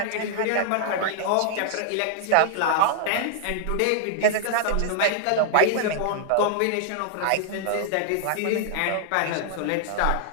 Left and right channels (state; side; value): different; both; correlation -0.01